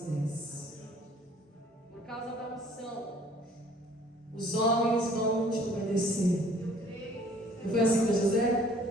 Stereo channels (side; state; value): both; normal; correlation 0.56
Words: Por causa da unção, os homens vão te obedecer. Não foi assim com José?